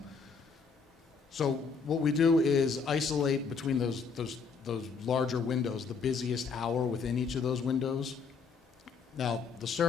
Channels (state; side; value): quieter; right; 5.2 dB